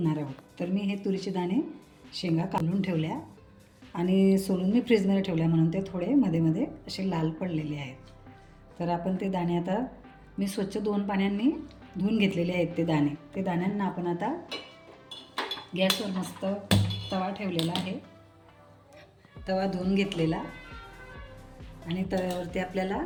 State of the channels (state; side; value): identical; both; correlation 1.00